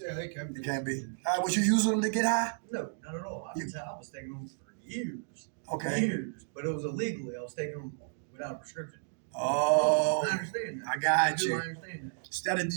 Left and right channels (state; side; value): silent; left; digital silence